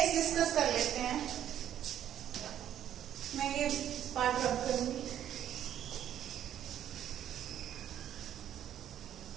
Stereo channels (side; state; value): left; quieter; 10.7 dB